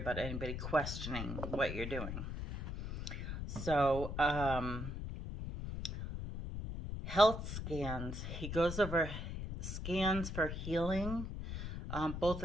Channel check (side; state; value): left; noise; rumble, 5 dB below the sound